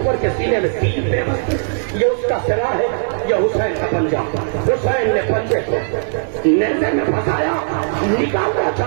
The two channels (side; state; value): left; silent; digital silence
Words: کے سینے میں تین پہ یہ اس کا سرا ہے, یہ حسین کا پنجہ. حسین نے پنجے کو نیزے میں پھنسایا, نکالنا